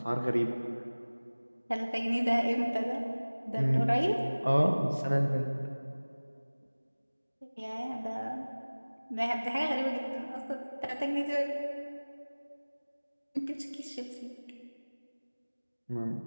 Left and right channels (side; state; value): both; inverted; correlation -1.00